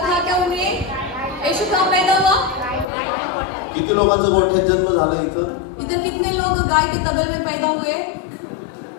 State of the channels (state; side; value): drops out; right; at 2.9 s